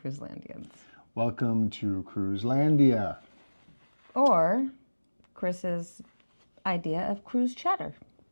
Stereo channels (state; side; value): inverted; both; correlation -1.00